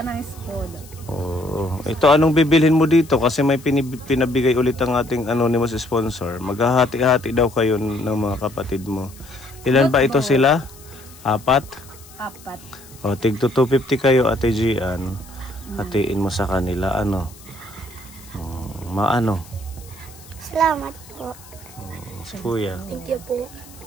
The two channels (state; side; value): noise; left; hiss, 22 dB below the sound